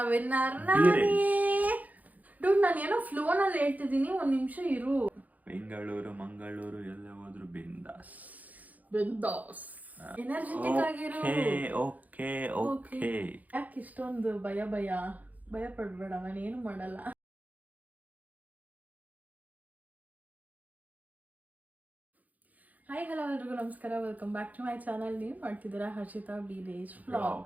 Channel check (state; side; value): late; left; 0.079 ms